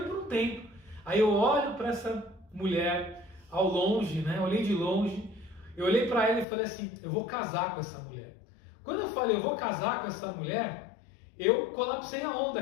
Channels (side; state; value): right; drops out; at 6.5 s